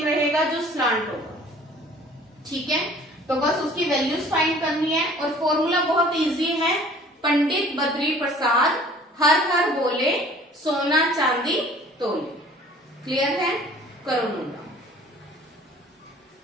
रहेगा जो स्लांट होगा, ठीक है। तो बस उसकी वैल्यूज फाइंड करनी है, और फॉर्मूला बहुत इजी है, पंडित बद्री प्रसाद हर हर बोले सोना चांदी तोले। क्लियर है, करो मुंडा।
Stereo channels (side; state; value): both; normal; correlation 0.50